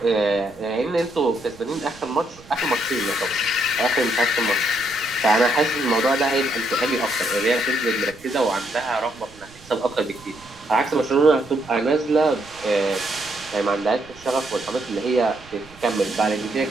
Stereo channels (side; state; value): right; noise; rumble, 23 dB below the sound